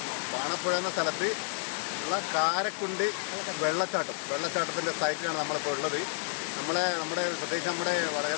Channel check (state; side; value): silent; right; digital silence